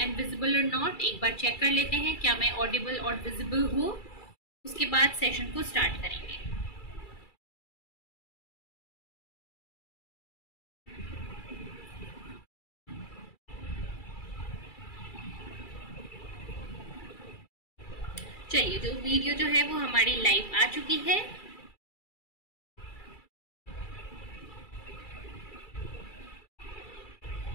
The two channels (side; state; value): right; late; 2.3 ms